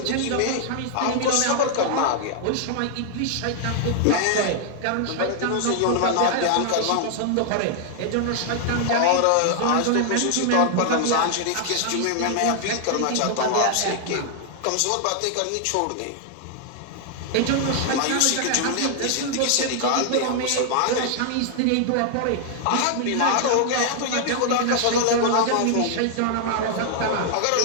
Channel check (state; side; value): different; both; correlation 0.00